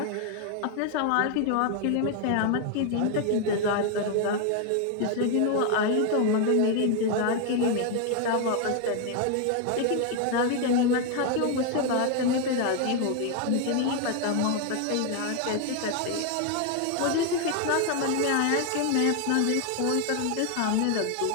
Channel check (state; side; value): different; both; correlation 0.01